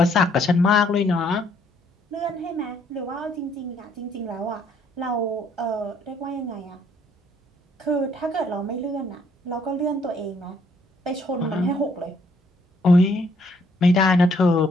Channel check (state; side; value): normal; both; correlation 0.67